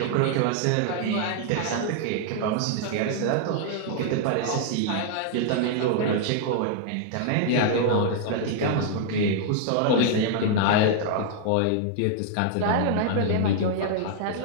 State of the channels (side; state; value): both; different; correlation 0.00